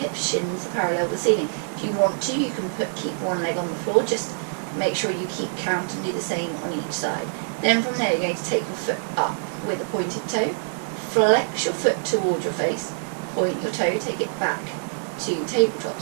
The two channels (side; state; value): left; silent; digital silence